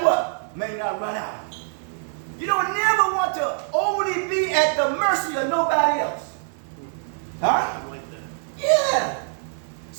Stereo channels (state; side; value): silent; left; 56 dB below the other